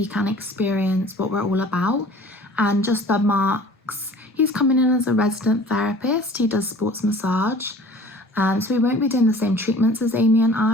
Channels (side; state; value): both; normal; correlation 0.46